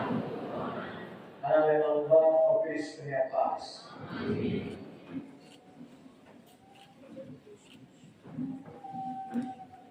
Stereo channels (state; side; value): identical; both; correlation 1.00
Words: Karena memang Bapa Kristus punya pas. Amin.